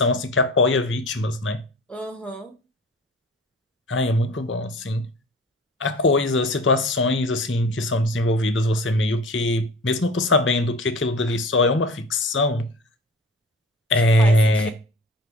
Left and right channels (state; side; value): normal; both; correlation 0.40